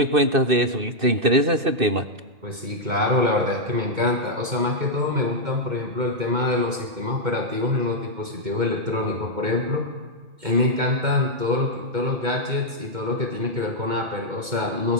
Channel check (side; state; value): left; late; 2.2 ms